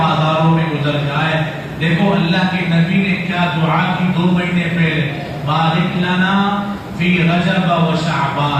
میں گزر جائے. دیکھو اللہ کے نبی نے کیا دعا کی 2 مہینے پہلے، بارک لنا فی رجب و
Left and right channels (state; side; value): identical; both; correlation 1.00